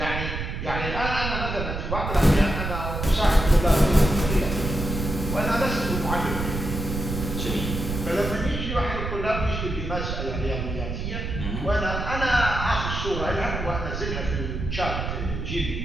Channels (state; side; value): noise; right; rumble, 4 dB below the sound